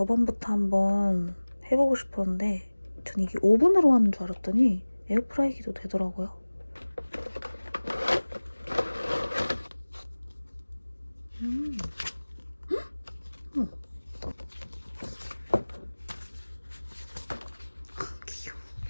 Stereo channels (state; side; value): inverted; both; correlation -1.00